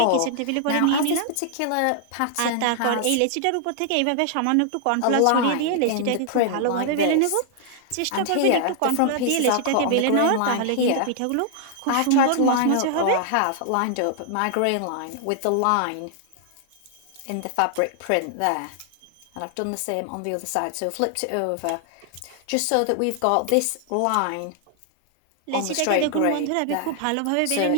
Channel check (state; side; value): different; both; correlation 0.00